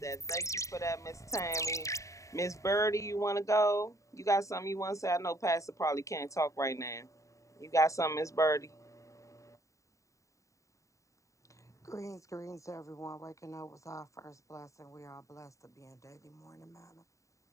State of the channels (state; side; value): late; right; 0.15 ms